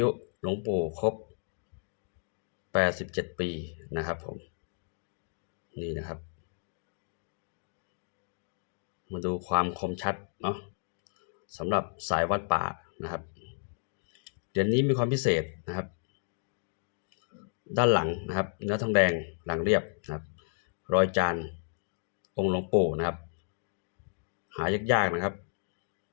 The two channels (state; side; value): silent; right; digital silence